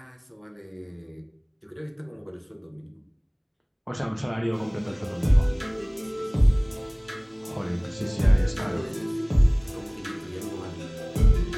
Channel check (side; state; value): both; identical; correlation 1.00